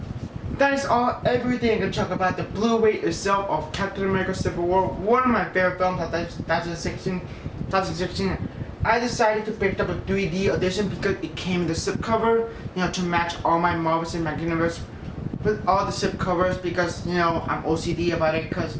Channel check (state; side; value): identical; both; correlation 1.00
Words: That is everything I can talk about the Blu-ray itself of Captain America Civil War. One of my favorite films of 2016. I decided to pick up a 3D edition because it came in the slipcover, to match all my Marvel Cinematic Universe with all the slipcovers, because I'm OCD about it because